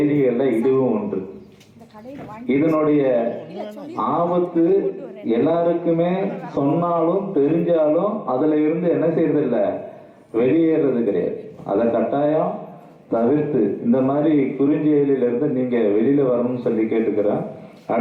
இதுவும் ஒன்று. இதனுடைய ஆபத்து எல்லாருக்குமே சொன்னாலும் தெரிஞ்சாலும் அதுல இருந்து என்ன செய்யறதில்ல, வெளியேறது கிடையாது. அதை கட்டாயம் தவிர்த்து இந்த மாதிரி குறுஞ்செயலில் இருந்து நீங்க வெளியில வரணும்னு சொல்லி கேட்டுக்கிறேன்.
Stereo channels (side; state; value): both; identical; correlation 1.00